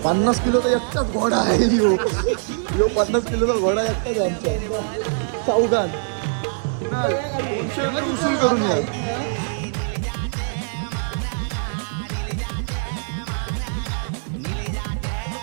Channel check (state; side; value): silent; left; digital silence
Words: 50 किलोचा एकटाच घोडा आहे यो. 50 किलोचा घोडा एकटाच आहे आमच्या चौघात. उसूल करून या.